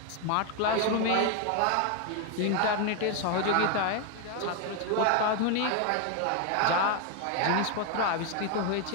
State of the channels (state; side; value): different; both; correlation 0.01